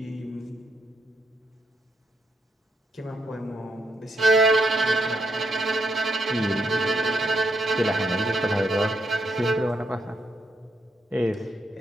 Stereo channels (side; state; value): both; normal; correlation 0.78